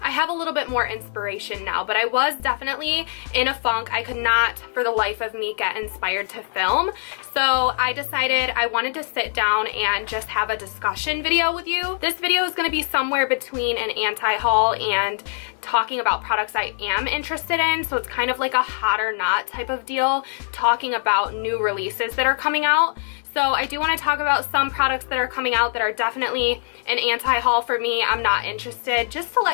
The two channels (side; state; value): right; silent; digital silence